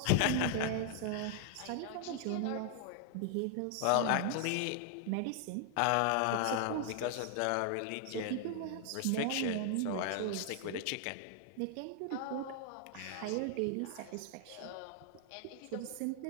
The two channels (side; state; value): both; different; correlation 0.00